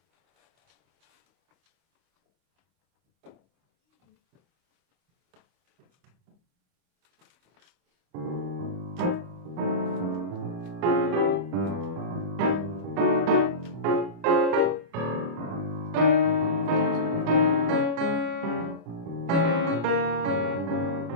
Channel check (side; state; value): left; late; 25 ms